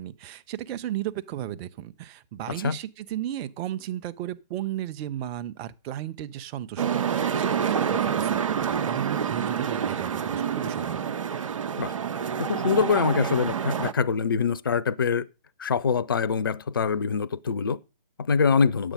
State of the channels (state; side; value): inverted; both; correlation -0.42